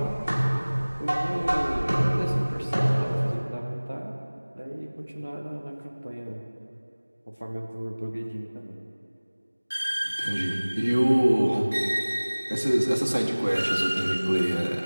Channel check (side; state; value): both; inverted; correlation -1.00